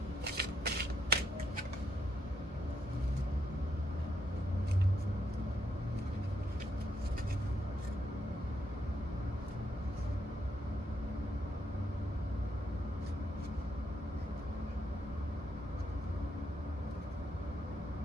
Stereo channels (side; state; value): both; normal; correlation 0.78